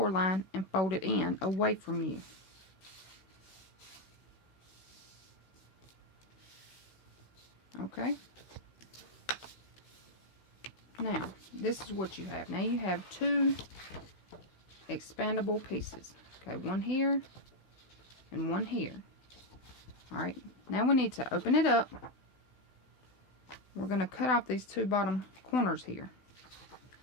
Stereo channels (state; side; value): late; right; 16 ms